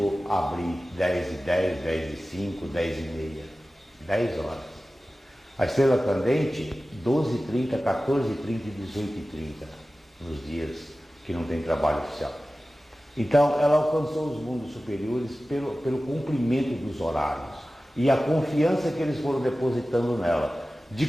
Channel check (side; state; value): both; normal; correlation 0.96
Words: abrir 10h10, 10h05, 10h30, 10 horas. A estrela candente, 12h30, 14h30 e 18h30, nos dias que não tem trabalho oficial. Então, ela alcançou os mundos superiores pelo cumprimento dos horários e a confiança que eles foram depositando nela. De